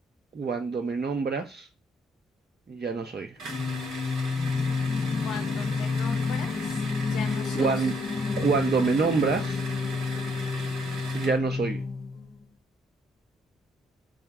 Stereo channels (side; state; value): both; normal; correlation 0.69